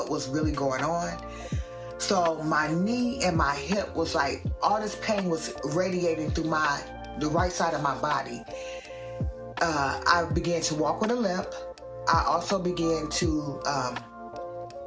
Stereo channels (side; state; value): both; identical; correlation 1.00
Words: was really going on. So my knee and my hip was like, all this pain was radiating through the right side of my body. I began to walk with a limp. I also began to,